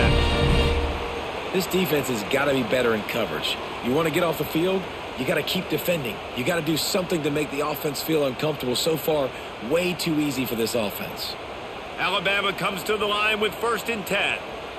This defense has got to be better in coverage. You want to get off the field, you got to keep defending. You got to do something to make the offense feel uncomfortable. So far, way too easy for this offense. Alabama comes to the line with 1st and 10.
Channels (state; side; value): identical; both; correlation 1.00